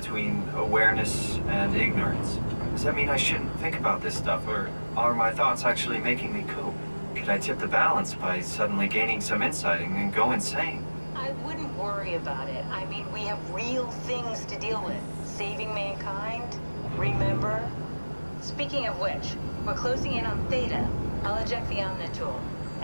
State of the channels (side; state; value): both; inverted; correlation -1.00